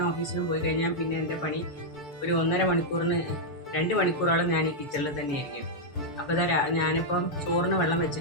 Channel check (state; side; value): late; right; 6.8 ms